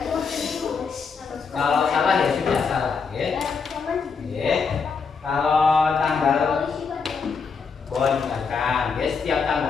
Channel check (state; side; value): quieter; right; 5.4 dB